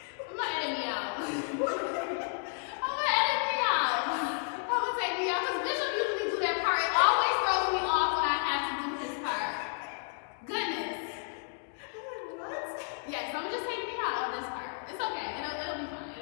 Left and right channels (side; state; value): right; silent; 56 dB below the other